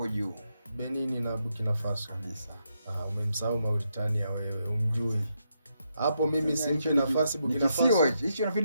juu. Benin na Burkina Faso. Kabisa. Umemsahau Mauritania wewe, umjui. Hapo mimi simpi nafasi Burkina Faso. Hicho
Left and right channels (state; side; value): inverted; both; correlation -0.81